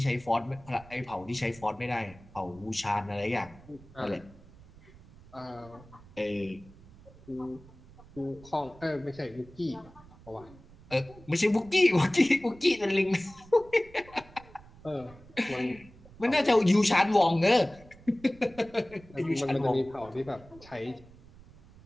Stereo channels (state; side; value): noise; right; rumble, 22 dB below the sound